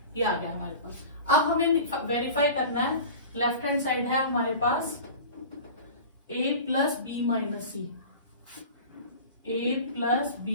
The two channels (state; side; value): inverted; both; correlation -0.37